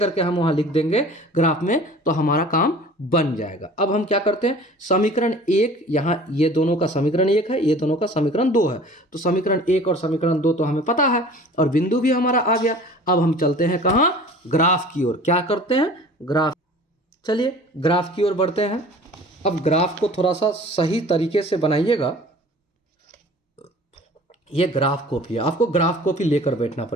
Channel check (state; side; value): normal; both; correlation 0.45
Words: हम वहाँ लिख देंगे ग्राफ में, तो हमारा काम बन जाएगा। अब हम क्या करते हैं, समीकरण 1, यहाँ ये दोनों का समीकरण 1 है, ये दोनों का समीकरण 2 है, तो समीकरण 1 और समीकरण 2 तो हमें पता है, और बिंदु भी हमारा आ गया। अब हम चलते हैं कहाँ? ग्राफ की ओर। क्या करते हैं? ग्राफ। चलिए ग्राफ की ओर बढ़ते हैं। अब ग्राफ को थोड़ा सा सही तरीके से बनाइएगा। ये ग्राफ कॉपी है, आपको ग्राफ कॉपी लेकर बैठना